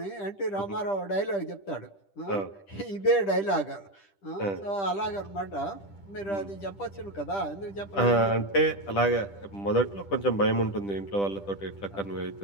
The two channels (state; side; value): late; right; 10 ms